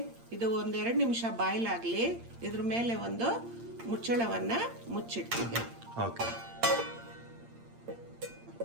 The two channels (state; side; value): late; left; 8.7 ms